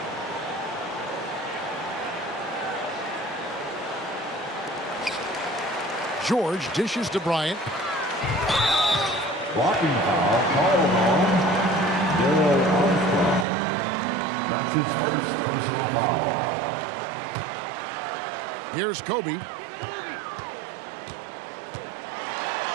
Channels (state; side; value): drops out; left; at 13.5 s